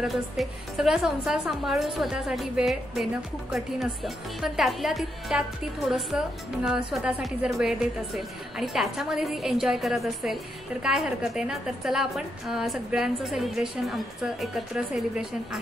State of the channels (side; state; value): both; normal; correlation 0.81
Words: असते, सगळा संसार सांभाळून स्वतःसाठी वेळ देणं खूप कठीण असतं। पण त्यात ती थोडंसं स्वतःसाठी जर वेळ देत असेल आणि त्याच्यामध्ये ती एन्जॉय करत असेल तर काय हरकत आहे ना। तर चला आपण सगळ्यांचं सेलिब्रेशन, आमचं एकत्र सेलिब्रेशन